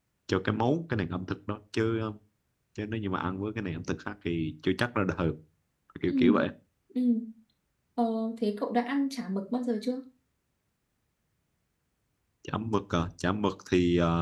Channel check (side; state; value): both; identical; correlation 1.00